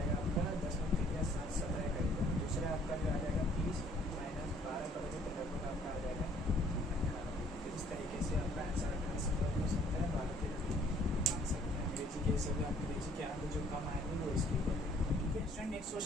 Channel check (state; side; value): normal; both; correlation 0.60